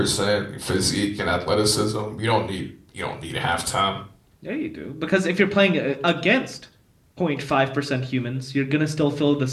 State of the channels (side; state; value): both; identical; correlation 1.00